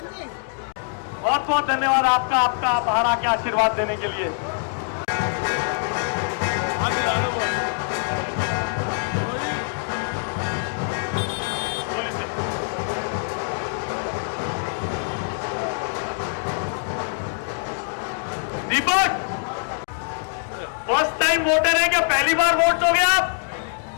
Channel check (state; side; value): silent; right; digital silence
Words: जी। बहुत बहुत धन्यवाद आपका बाहर आके आशीर्वाद देने के लिए। दीपक फर्स्ट टाइम वोटर है क्या? पहली बार वोट दोगे आप?